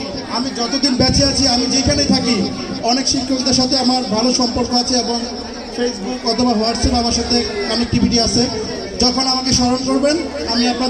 আমি যতদিন বেঁচে আছি, আমি যেখানেই থাকি, অনেক শিক্ষকদের সাথে আমার ভালো সম্পর্ক আছে এবং ফেসবুক অথবা হোয়াটসঅ্যাপ আমার সাথে কানেক্টিভিটি আছে। যখন আমাকে স্মরণ করবেন, আমি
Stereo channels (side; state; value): both; identical; correlation 1.00